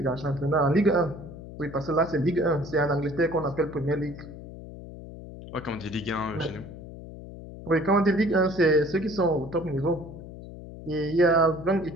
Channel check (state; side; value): noise; left; hum, 14 dB below the sound